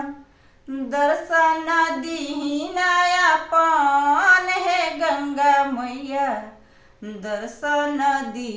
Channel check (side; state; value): both; identical; correlation 1.00